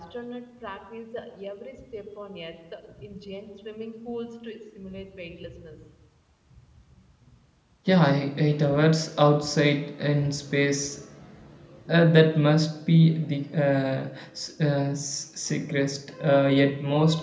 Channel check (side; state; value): both; identical; correlation 1.00